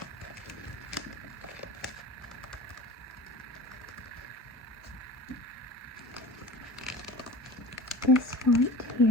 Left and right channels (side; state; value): both; normal; correlation 0.36